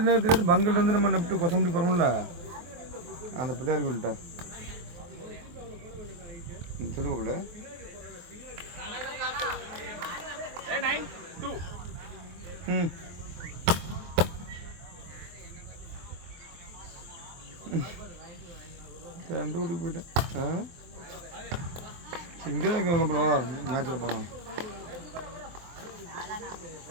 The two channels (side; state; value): left; late; 23 ms